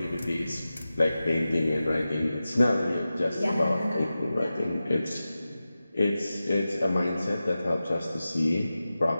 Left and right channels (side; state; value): both; inverted; correlation -0.94